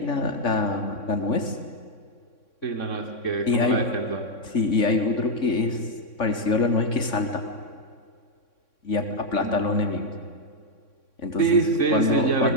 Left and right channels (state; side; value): late; right; 3.6 ms